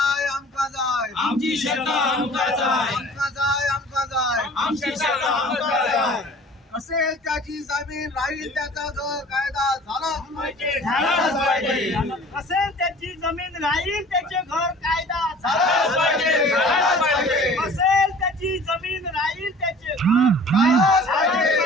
आमका जाय, आमची शेती आमका जाय, आमका जाय, आमका जाय, आमची शेती आमका जाय. असेल त्याची जमीन राहील त्याचा घर कायदा झालाच पाहिजे, झालाच पाहिजे, असेल त्याची जमीन राहील त्याचे घर कायदा झालाच पाहिजे, झालाच पाहिजे, असेल त्याची जमीन राहील त्याचे झालाच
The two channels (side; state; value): both; normal; correlation 0.46